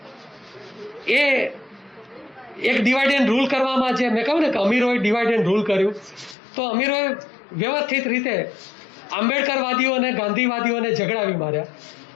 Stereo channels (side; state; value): right; drops out; at 6.4 s